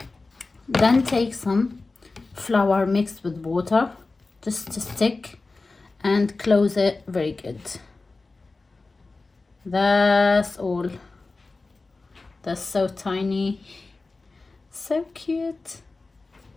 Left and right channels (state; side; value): quieter; right; 3.6 dB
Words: Then take some flour mixed with water just to stick and close it very good. That's all. That's so tiny. So cute.